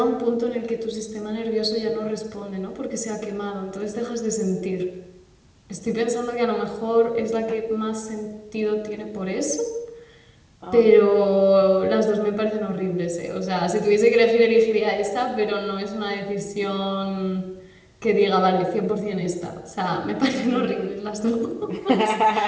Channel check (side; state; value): both; identical; correlation 1.00